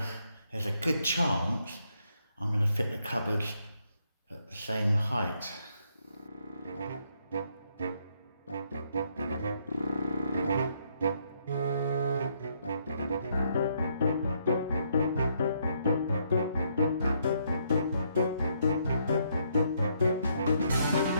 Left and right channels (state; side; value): inverted; both; correlation -0.73